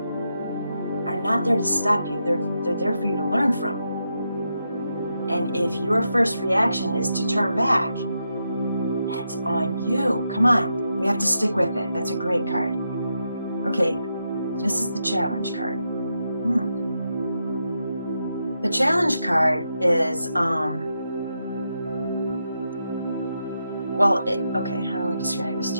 are not there to stop you. They're there for you to learn from. And if your first reaction is to turn back, that's on you. Come on, we have to stick with it. That's a great card. Okay, this is the challenge card. The challenge card is, okay, how do I describe this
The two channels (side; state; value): both; inverted; correlation -0.84